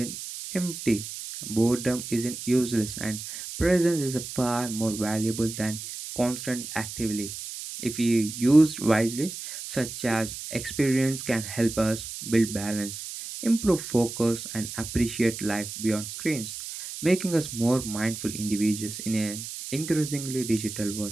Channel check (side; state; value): right; noise; hiss, 9 dB below the sound